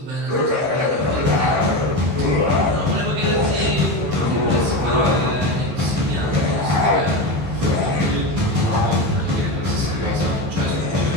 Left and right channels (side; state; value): left; late; 15 ms